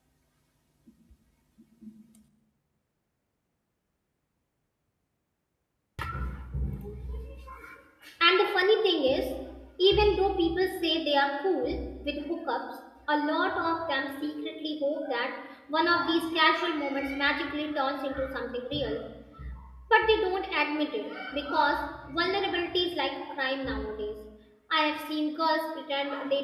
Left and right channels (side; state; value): both; identical; correlation 1.00